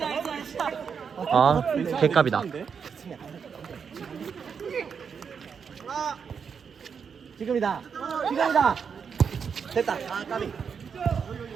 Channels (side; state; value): left; quieter; 6.5 dB